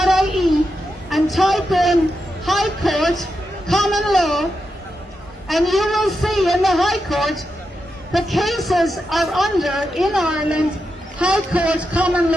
and type in High Court, Common Law, and you will see in the High Court the cases are under, in Ireland, High Court Common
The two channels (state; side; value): normal; both; correlation 0.87